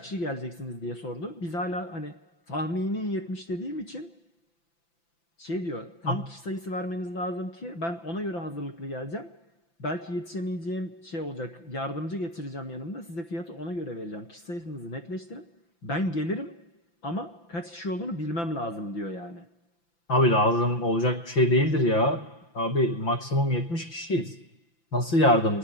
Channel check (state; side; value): late; right; 5.9 ms